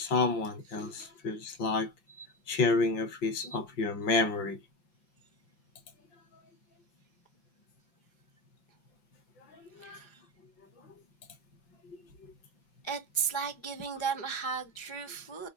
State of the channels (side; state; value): right; late; 5.4 ms